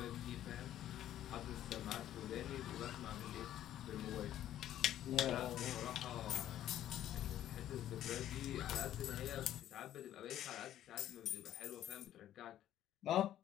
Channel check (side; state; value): right; quieter; 12.1 dB